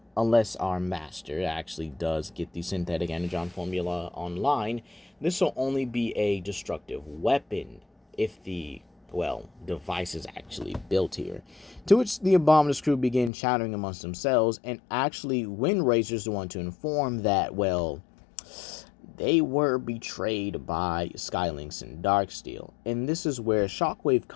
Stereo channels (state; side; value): drops out; right; at 13.3 s